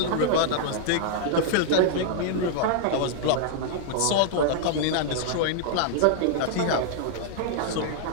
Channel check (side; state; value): both; different; correlation -0.01